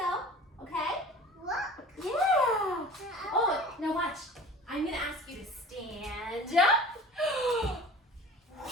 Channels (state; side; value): normal; both; correlation 0.41